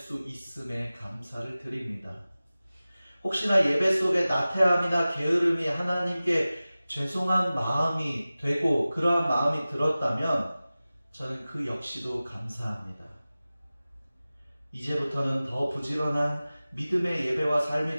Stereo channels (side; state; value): both; inverted; correlation -0.97